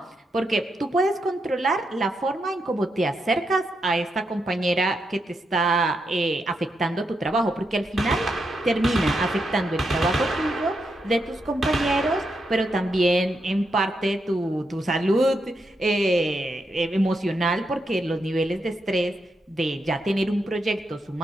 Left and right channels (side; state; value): both; normal; correlation 0.83